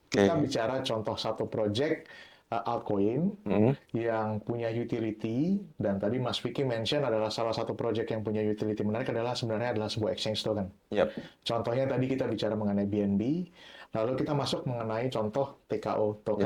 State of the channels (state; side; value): identical; both; correlation 1.00